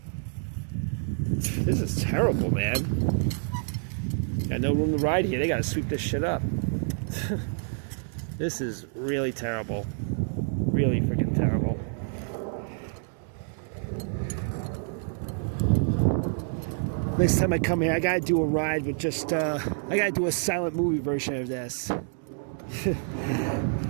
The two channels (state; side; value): silent; left; 59 dB below the other